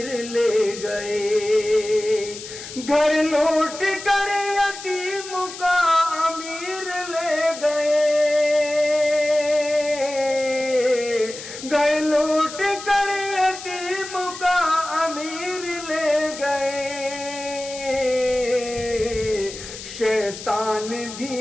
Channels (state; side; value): noise; left; hiss, 12 dB below the sound